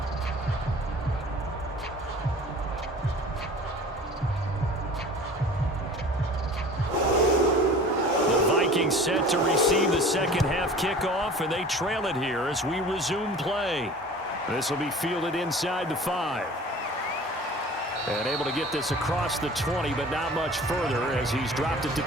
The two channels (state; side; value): normal; both; correlation 0.43